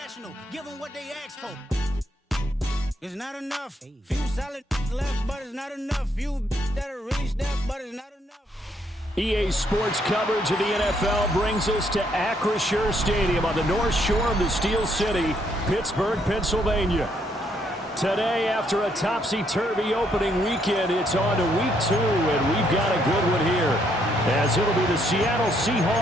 give them what they ask for. It's not enough. Few solid left, but it's not enough. Few that are really step, but it's not enough. EA Sports coverage of the NFL brings us to Acrisure Stadium on the north shore of the Steel City, Pittsburgh, Pennsylvania. Today, after a topsy-turvy opening weekend, it's on to week 2, and we've got a good one here, as it'll be the Seattle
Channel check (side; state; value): both; normal; correlation 0.72